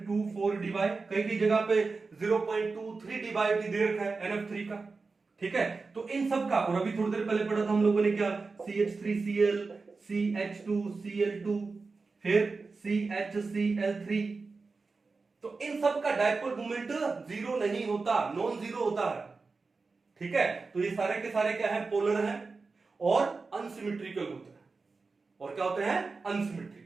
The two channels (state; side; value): quieter; left; 4.2 dB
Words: divide. कई कई जगह पे 0.23 डिवाइड भी दे रखा है NF3 का, ठीक है। तो इन सब का, और अभी थोड़ी देर पहले पढ़ा था हम लोगों ने क्या? CH3Cl, CH2Cl2, फिर CHCl3। तो इन सब का डाइपोल मोमेंट 0 नहीं होता, नॉन 0 होता है, ठीक है। तो ये सारे के सारे क्या है? पोलर हैं और अनसिमेट्रिकल होते हैं। और क्या होते हैं?